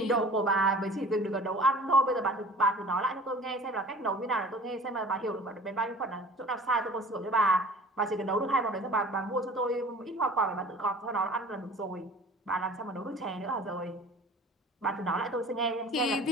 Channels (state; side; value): normal; both; correlation 0.45